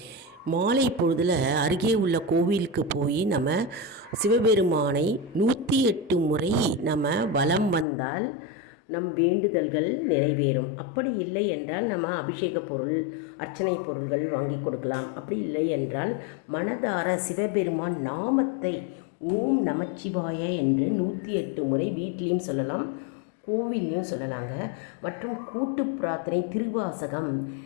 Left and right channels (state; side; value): drops out; right; at 7.9 s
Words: மாலை பொழுதில் அருகே உள்ள கோவிலுக்கு போய் நம்ம சிவபெருமானை 108 முறை நம்ம வலம் வந்தால் நம் வேண்டுதல்கள் நிறைவேறும். அப்படி இல்லை என்றால் நம்ம அபிஷேக பொருள், அர்ச்சனை பொருள்கள் வாங்கி கொடுக்கலாம். அப்படி இல்லை என்றால் மனதார சிவபெருமான் நாமத்தை ஓம் நமச்சிவாய என்று 108 முறை வீட்லேயும் சொல்லலாம், கோவில்லையும் சொல்லலாங்க. மற்றும் கூட்டு பிரார்த்தனை திருவாசகம்